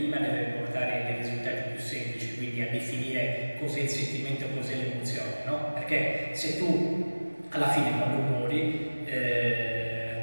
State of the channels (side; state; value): both; inverted; correlation -1.00